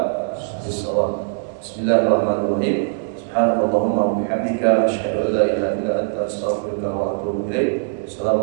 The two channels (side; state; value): left; silent; digital silence